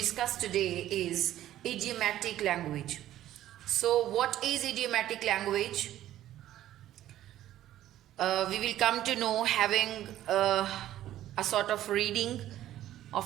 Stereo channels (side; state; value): left; quieter; 13.1 dB